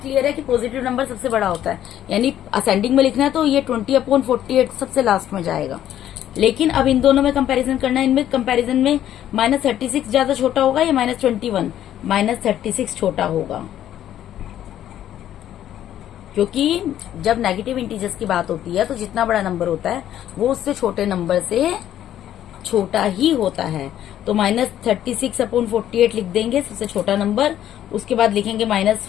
है कि पॉजिटिव नंबर सबसे बड़ा होता है, यानी असेंडिंग में लिखना है तो ये 20/48 सबसे लास्ट में जाएगा। लेकिन अब इन दोनों में कंपैरिजन करना है। इनमें कंपैरिजन में -36 ज्यादा छोटा होगा या -21, -36 छोटा होगा, क्योंकि जब नेगेटिव इंटीजर्स की बात होती है तो जितना बड़ा नंबर होता है वो उससे छोटे नंबर से छोटा ही होता है। तो -36/48 लिख देंगे, सबसे छोटा नंबर। उसके बाद लिखेंगे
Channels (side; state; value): right; quieter; 11.5 dB